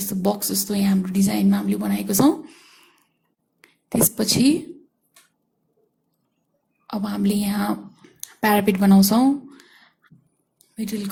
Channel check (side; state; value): both; identical; correlation 1.00